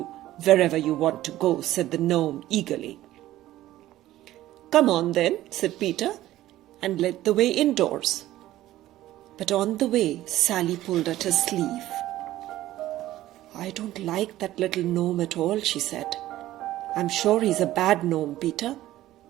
wherever you want to go," said the gnome eagerly. "Come on then," said Peter, and led the way indoors. But on the way, Sally pulled at his sleeve. "I don't like that little gnome at all," she said. "I'm sure he's a bad gnome, Peter.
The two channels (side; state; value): left; quieter; 14.8 dB